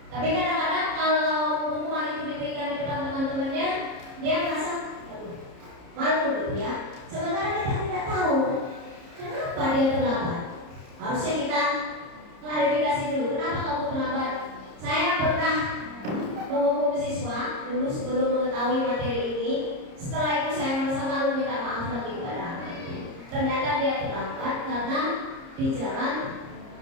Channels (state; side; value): late; left; 30 ms